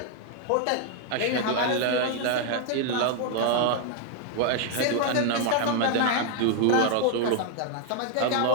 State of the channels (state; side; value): different; both; correlation 0.00